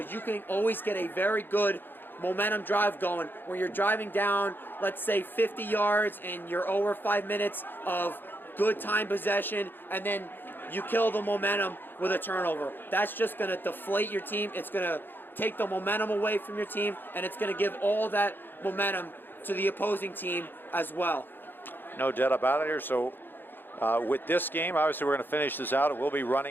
you can always get a very good momentum drive going where you're driving down, let's say 50 yards, and you're over 5 minutes of good time possession, and then you kill the momentum with a turnover. That's just going to deflate your team. It's going to take the momentum away from your team, and it's going to give all that momentum to the opposing team as well. No doubt about it here. So with this game, obviously we're going to finish this out. It will be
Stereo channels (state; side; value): late; right; 0.096 ms